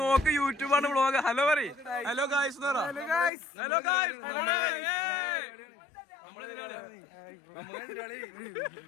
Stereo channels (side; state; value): right; drops out; at 3.3 s